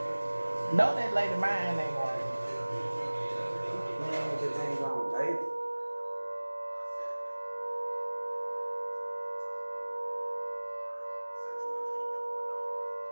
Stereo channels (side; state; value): both; inverted; correlation -1.00